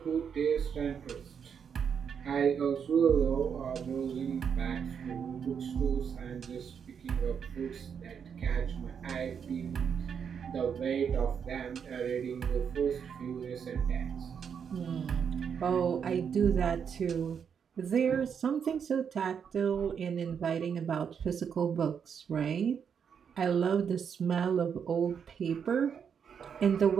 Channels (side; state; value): left; quieter; 7.2 dB